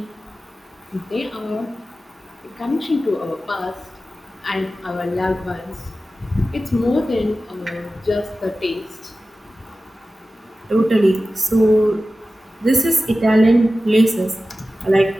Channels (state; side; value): normal; both; correlation 0.95